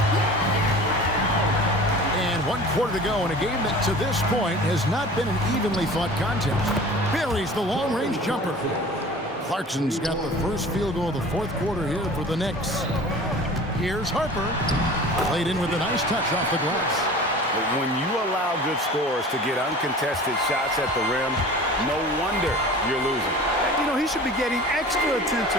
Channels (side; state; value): both; normal; correlation 0.41